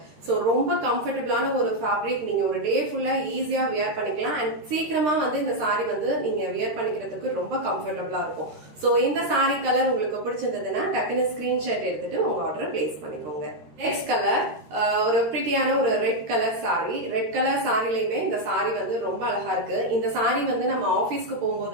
So ரொம்ப கம்ஃபர்டபிளான ஒரு ஃபேப்ரிக். நீங்க ஒரு டே ஃபுல்லா ஈஸியா வியர் பண்ணிக்கலாம். அண்ட் சீக்கிரமா வந்து இந்த சாரி வந்து நீங்க வியர் பண்ணிக்கிறதுக்கு ரொம்ப கம்ஃபர்டபிளா இருக்கும். சோ இந்த சாரி கலர் உங்களுக்கு பிடிச்சிருந்ததுன்னா டக்குனு ஸ்கிரீன்ஷாட் எடுத்துட்டு உங்க ஆர்டர் பிளேஸ் பண்ணிக்கோங்க. நெக்ஸ்ட் கலர் ஒரு பிரிட்டியான ஒரு red colour sari. Red colour சாரிலையுமே இந்த சாரி வந்து ரொம்ப அழகா இருக்கு. இந்த சாரி வந்து நம்ம ஆபீஸ்க்கு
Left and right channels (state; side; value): late; left; 13 ms